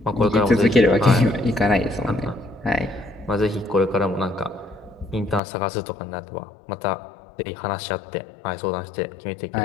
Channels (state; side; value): drops out; right; at 5.4 s